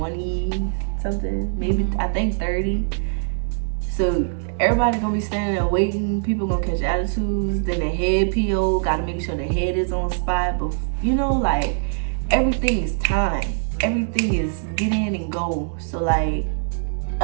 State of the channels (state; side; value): silent; left; digital silence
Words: something, maybe I think 30. So everybody gonna be standing there waiting. People gonna catch attitudes. Then the head PO gotta make sure the head is on spot. But you know, like, everything is time. Everything is get in and go. So like,